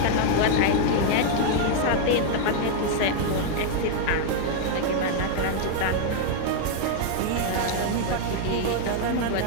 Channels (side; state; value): both; different; correlation 0.00